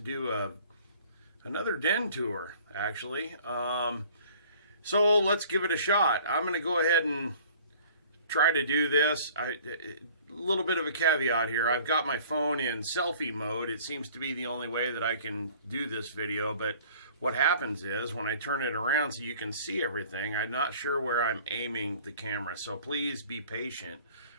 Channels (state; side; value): inverted; both; correlation -0.51